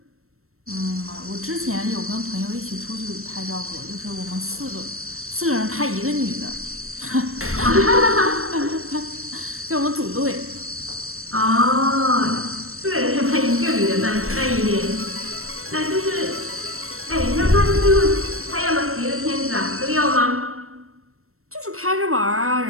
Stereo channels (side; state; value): left; late; 0.63 ms